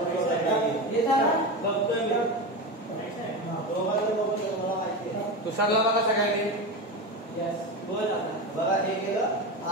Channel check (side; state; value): both; normal; correlation 0.21